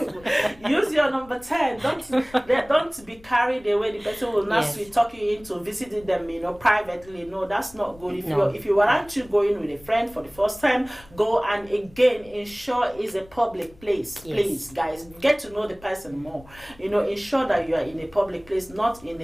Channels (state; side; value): noise; left; rumble, 24 dB below the sound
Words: Use your number 10. Don't be carried away. The person will not talk you into visiting them, privately. No, that's not good. If you want to go in with a friend for the first time, go, and again, ensure it's a public place. Please, guys, get to know the person more. Ensure that you are in a public place, not in